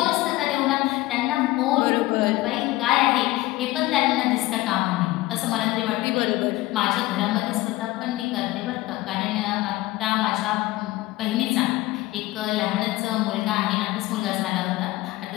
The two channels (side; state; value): right; quieter; 18.4 dB